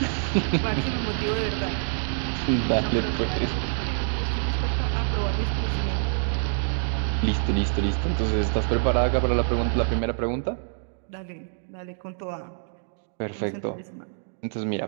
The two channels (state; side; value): silent; left; digital silence